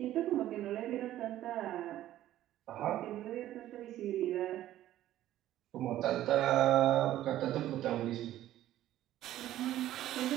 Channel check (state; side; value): quieter; left; 13.4 dB